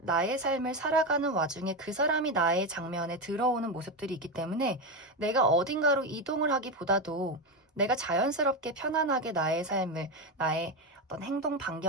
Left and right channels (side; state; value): both; normal; correlation 0.13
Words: 나의 삶을 살아가는 와중에 그 사람이 나의 장면에 들어오는 모습들이 있기 때문에, 내가 어딘가로 이동을 하기보다도 내가 자연스럽게 편안하게 나의 삶을, 나의 어떤 행동